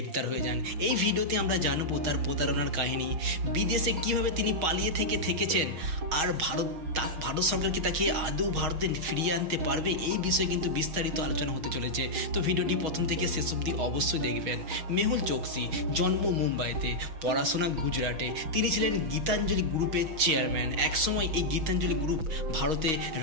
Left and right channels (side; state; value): left; late; 6.3 ms